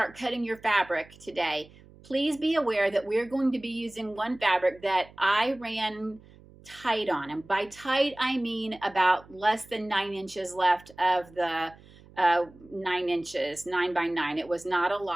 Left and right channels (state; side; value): noise; right; hum, 23 dB below the sound